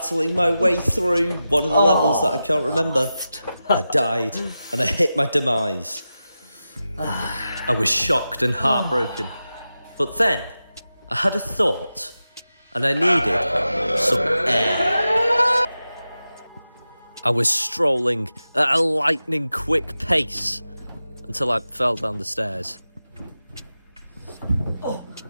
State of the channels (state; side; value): inverted; both; correlation -0.93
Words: my way through one of the levels that I can't remember, I died and I hit my demise. I was shocked and heartbroken. But then I had a thought and I needed some air. I was strolling at a lightning quick pace until I fell down the stairs.